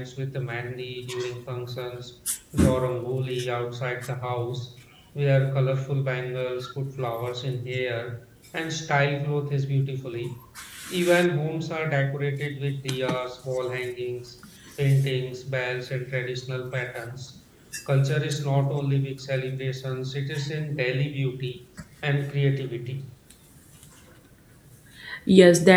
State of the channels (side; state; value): both; identical; correlation 1.00